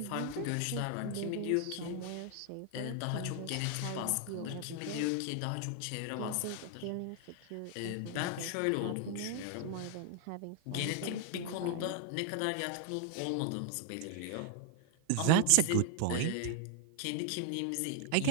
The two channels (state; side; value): different; both; correlation 0.01